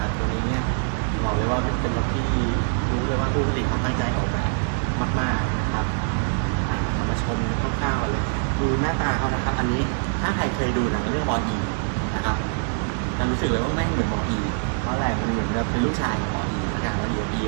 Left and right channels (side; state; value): left; silent; 57 dB below the other